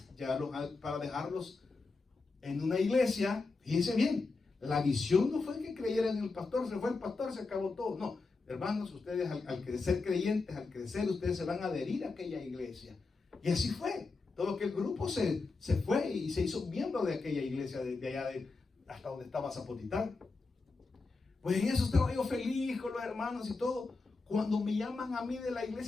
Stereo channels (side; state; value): right; quieter; 3.9 dB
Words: para dejarlos en una iglesia. Fíjense bien, la visión no fue que creyeran en el pastor, se fue el pastor, se acabó todo, no, hermanos, ustedes al crecer creyentes, al crecer, ustedes se van a adherir a aquella iglesia, y así fue. Todo aquel grupo se fue y se hizo miembro de aquella iglesia de allá hasta donde estaba Zapotitán. Pues en eso estaba yo feliz con los hermanos y todo. Cuando me llaman a mí de la